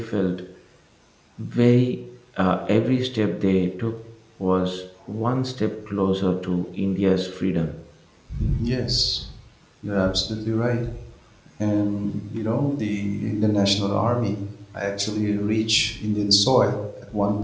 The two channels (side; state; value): both; identical; correlation 1.00